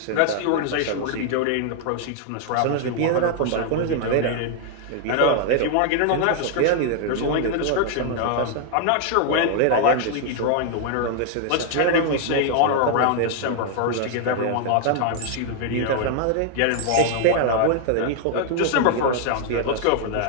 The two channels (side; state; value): both; different; correlation 0.00